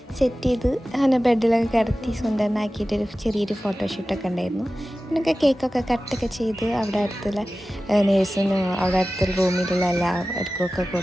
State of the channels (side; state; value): both; normal; correlation 0.95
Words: സെറ്റ് ചെയ്ത് അങ്ങനെ ബെഡിലൊക്കെ കിടത്തി സുന്ദരനാക്കിയിട്ടൊരു ചെറിയൊരു ഫോട്ടോഷൂട്ടൊക്കെ ഉണ്ടായിരുന്നു. പിന്നൊക്കെ കേക്കൊക്കെ കട്ടൊക്കെ ചെയ്ത് അവിടെ അടുത്തുള്ള നേഴ്സിനും അവിടെ അടുത്തുള്ള റൂമിലുള്ള എല്ലാവർക്കൊക്കെ